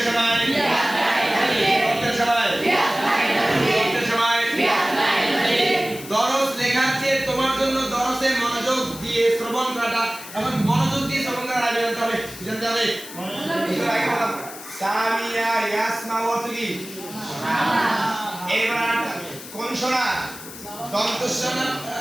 সময় দরসের সময় দরস লেখার চেয়ে তোমার জন্য দরসে মনোযোগ দিয়ে শ্রবণ করাটা এমন মনোযোগ দিয়ে শ্রবণ করার আগে জানতে হবে সামিয়া ইয়াসমা অর্থ কি এবার কোন শোনা দন্তস্বনা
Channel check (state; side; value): noise; left; hiss, 14 dB below the sound